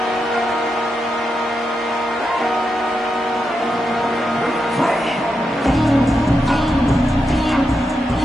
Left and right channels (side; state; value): both; normal; correlation 0.86